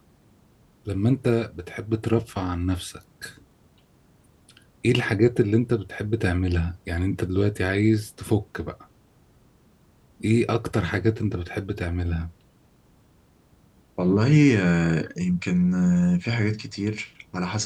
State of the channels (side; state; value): both; identical; correlation 1.00